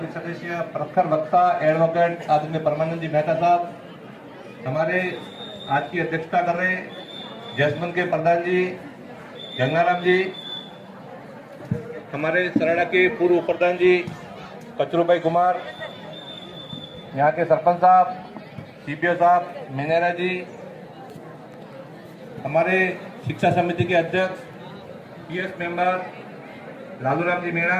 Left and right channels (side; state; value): both; identical; correlation 1.00